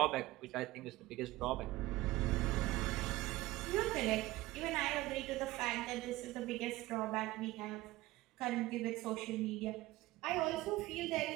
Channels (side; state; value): left; quieter; 18.2 dB